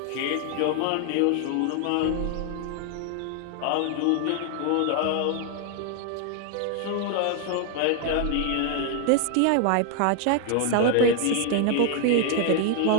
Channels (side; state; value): both; different; correlation 0.00